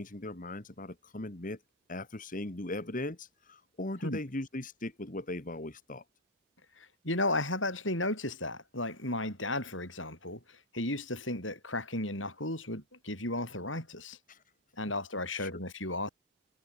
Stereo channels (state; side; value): normal; both; correlation 0.00